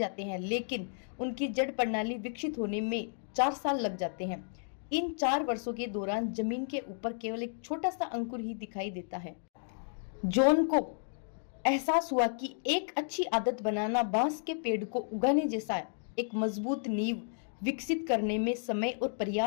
हैं, लेकिन उनकी जड़ प्रणाली विकसित होने में 4 साल लग जाते हैं। इन 4 वर्षों के दौरान जमीन के ऊपर केवल एक छोटा सा अंकुर ही दिखाई देता है। जॉन को एहसास हुआ कि एक अच्छी आदत बनाना बांस के पेड़ को उगाने जैसा है। एक मजबूत नींव विकसित करने में समय और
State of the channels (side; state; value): right; silent; digital silence